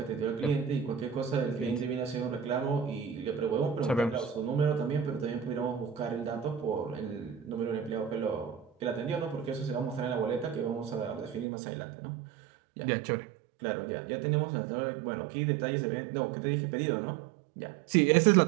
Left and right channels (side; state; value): left; drops out; at 11.5 s